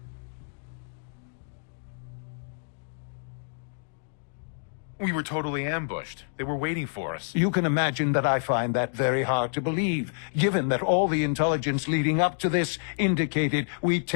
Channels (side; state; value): right; silent; digital silence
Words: We were totally ambushed. They were waiting for us. You can imagine that I find that very hard to believe, given that all the intelligence leading up to this indicated we'd